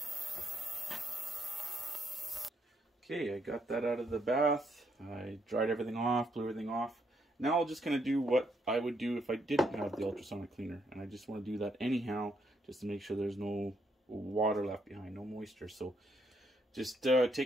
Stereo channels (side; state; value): both; normal; correlation 0.74